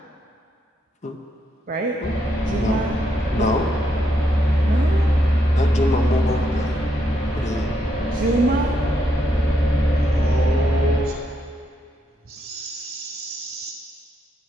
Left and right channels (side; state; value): both; normal; correlation 0.78